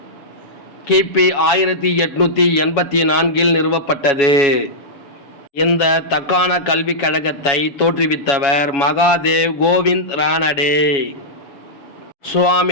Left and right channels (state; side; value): late; right; 7.2 ms